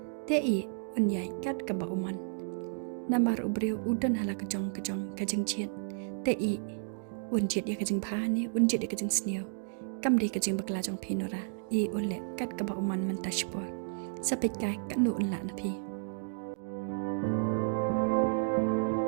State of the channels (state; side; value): silent; left; digital silence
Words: te i unyai kat ka ba uman namar ubreu udan hala kejong kajeng chiet te i un chiet ya kajeng pha ni un chiet ya kajeng sneo kam de kajeng bakla jong phi nora i un le kat ka ba uman man tashpor sapet kai ka nu un la na phi